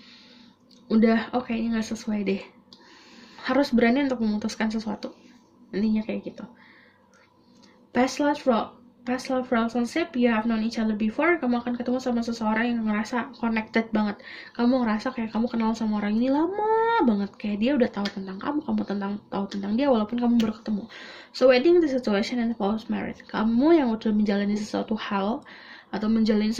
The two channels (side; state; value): both; identical; correlation 1.00